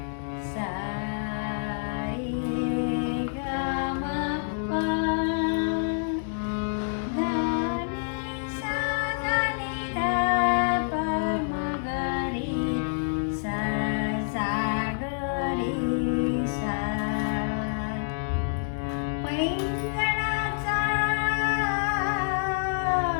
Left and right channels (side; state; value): right; silent; digital silence